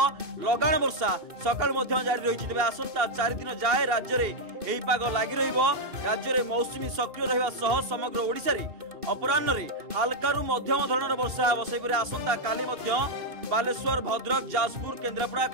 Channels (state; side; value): late; left; 2.7 ms